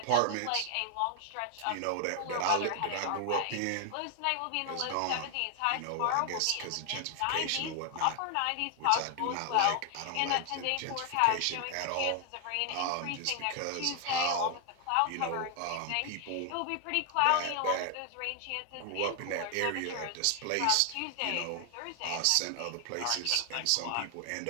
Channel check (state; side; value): different; both; correlation 0.00